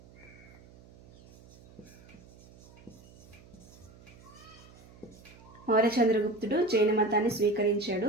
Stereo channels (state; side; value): noise; right; hum, 23 dB below the sound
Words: మౌర్య చంద్రగుప్తుడు జైన మతాన్ని స్వీకరించాడు.